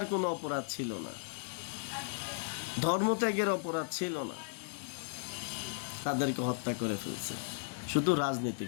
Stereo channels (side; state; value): right; silent; digital silence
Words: কোনো অপরাধ ছিল না, ধর্মত্যাগের অপরাধ ছিল না, তাদেরকে হত্যা করে ফেলছে শুধু